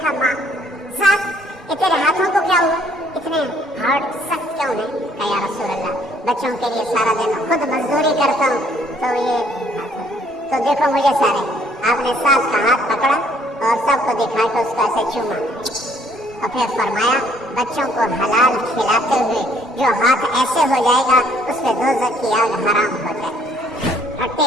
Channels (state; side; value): normal; both; correlation 0.63